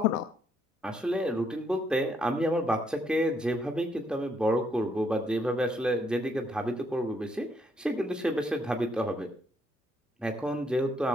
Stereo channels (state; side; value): normal; both; correlation 0.73